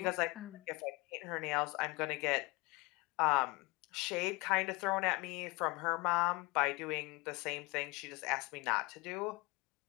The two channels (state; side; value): quieter; right; 24.4 dB